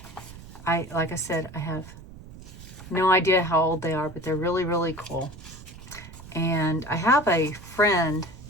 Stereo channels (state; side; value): noise; right; rumble, 16 dB below the sound